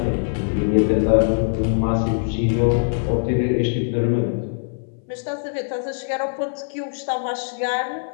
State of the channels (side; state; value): right; silent; 59 dB below the other